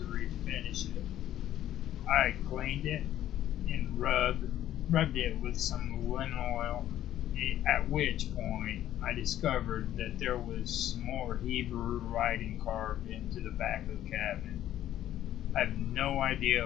refinish it. I cleaned it and rubbed it with some linseed oil, at which point I discovered that there was some more Hebrew writing carved into the back of the cabinet. I have no idea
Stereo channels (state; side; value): quieter; right; 12.3 dB